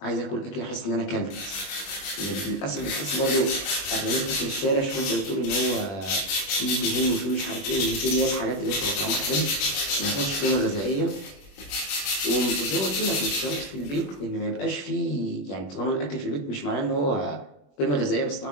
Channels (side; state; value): right; late; 21 ms